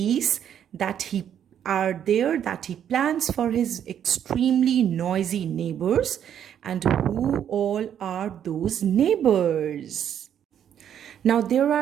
that he plans for his extremely noisy neighbors, and who all are those neighbors. Now there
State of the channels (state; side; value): quieter; left; 9.4 dB